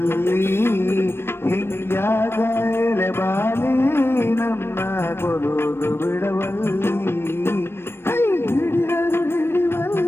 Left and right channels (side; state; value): right; late; 0.12 ms